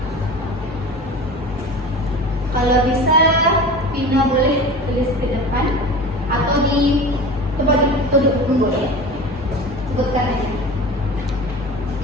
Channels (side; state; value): both; normal; correlation 0.34